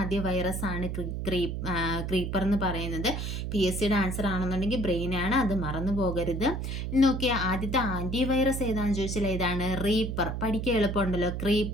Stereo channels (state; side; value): noise; right; hum, 3 dB below the sound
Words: വൈറസ് ആണ് ക്രീപ്പർ എന്ന് പറയുന്നത്. PSCയുടെ ആൻസർ ആണെന്നുണ്ടെങ്കിൽ ബ്രെയിനാണ്, അത് മറന്നു പോകരുത്. നോക്കിയാൽ ആദ്യത്തെ ആൻറ്റിവൈറസ് ഏതാണെന്ന് ചോദിച്ചാൽ ഏതാണ്, റീപ്പർ. പഠിക്കാൻ എളുപ്പമുണ്ടല്ലോ,